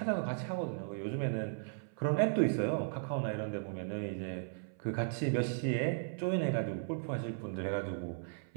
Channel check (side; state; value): left; silent; 54 dB below the other